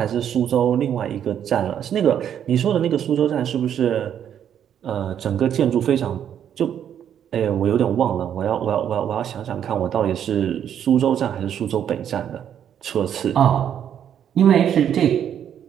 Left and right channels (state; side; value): quieter; left; 9.3 dB